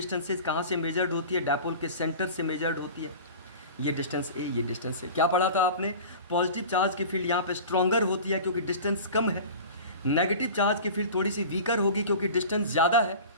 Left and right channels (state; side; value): inverted; both; correlation -0.37